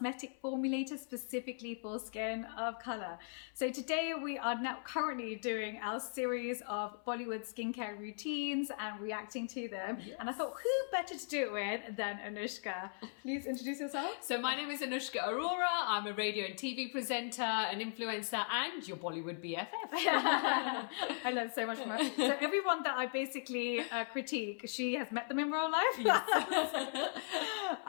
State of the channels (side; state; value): right; silent; 52 dB below the other